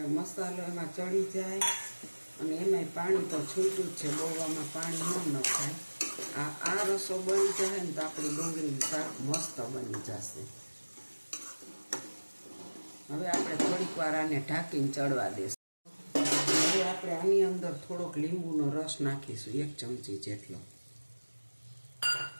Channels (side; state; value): both; inverted; correlation -1.00